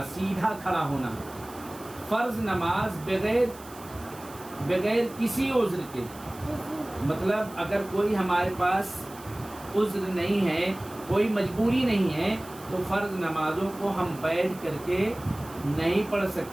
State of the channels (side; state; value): right; noise; hiss, 20 dB below the sound